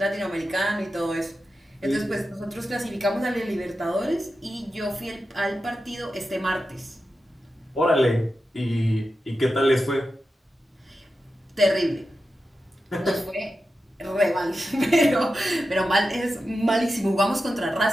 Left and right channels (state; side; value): normal; both; correlation 0.91